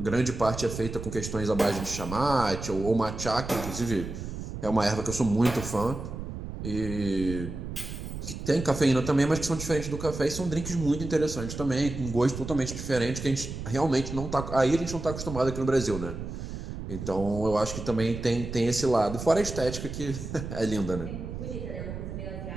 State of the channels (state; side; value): noise; right; rumble, 8 dB below the sound